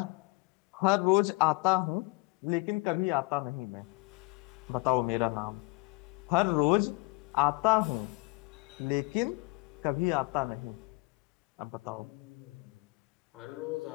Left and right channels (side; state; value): right; quieter; 27.0 dB